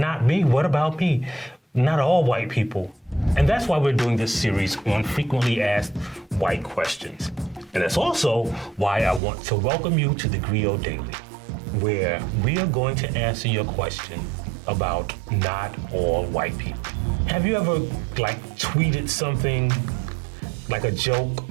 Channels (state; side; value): drops out; left; at 9.2 s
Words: me, what about me? Not all white people. And that's why we're doing this series on frequently asked white questions. And that's also why I want to welcome you to theGrio Daily, where we are going to answer your question about not all white people. Have you ever tweeted something like a joke